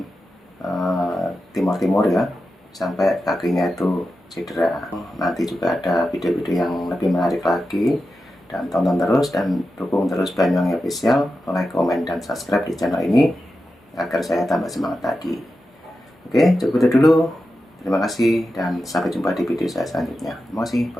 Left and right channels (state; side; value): normal; both; correlation 0.91